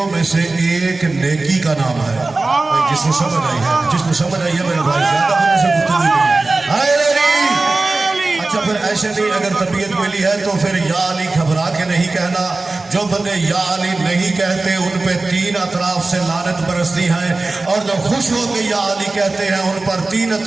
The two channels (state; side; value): quieter; left; 3.3 dB